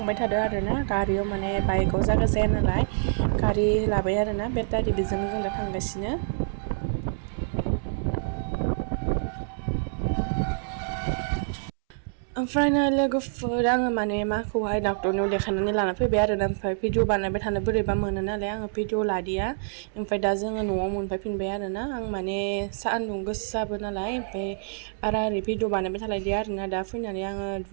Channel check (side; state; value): left; silent; 60 dB below the other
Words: थादों आरोना गारियाव माने बाइकआव जायगा जाया नालाय गारि लाबाय आरोना बेटारि बेजोंनो जों दा थांगासिनो ओमफ्राय नै लोगोफोर आङो माने माखौहाय डाक्टरनियाव देखायनानै लाना फैबाय आरोना ओमफ्राय भिडिअ बानायबाय थानो बोरैबा मोनो नालाय आङो भिडिअ लादिया ओमफ्राय दा जोङो न'आव मोनफैफिनबाय आरोना आं माने सान्दुं गोसाबो नालाय ओमफ्राय बारा ओरै भिडिअ बानायबाय थालायदिया आरोना दा फैनानै आङो